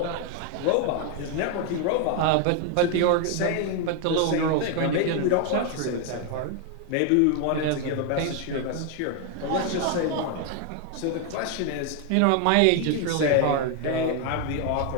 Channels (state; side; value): different; both; correlation 0.00